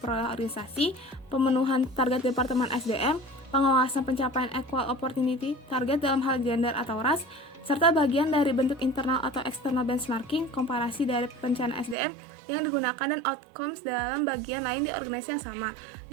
organisasi, pemenuhan target departemen SDM, pengawasan pencapaian equal opportunity target dalam hal gender atau ras, serta bagian dari bentuk internal atau external benchmarking, komparasi dari perencanaan SDM yang digunakan dan outcomes dalam bagian lain di organisasi yang sama.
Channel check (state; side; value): drops out; left; at 12.0 s